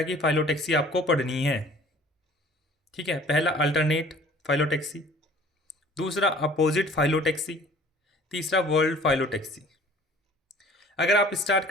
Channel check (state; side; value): normal; both; correlation 0.51